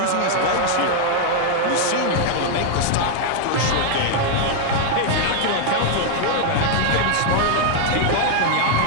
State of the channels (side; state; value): both; different; correlation 0.00